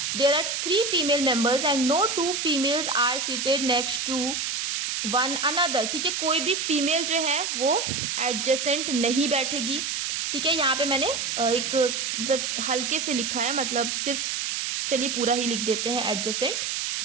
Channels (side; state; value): right; noise; hiss, 1 dB below the sound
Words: There are 3 female members and no 2 females are seated next to one another, ठीक है, कोई भी फीमेल जो है वो एडजेसेंट नहीं बैठेगी, ठीक है। यहाँ पे मैंने एक मतलब हल्के से लिखा है, मतलब सिर्फ चलिए पूरा ही लिख देते हैं एडजेसेंट।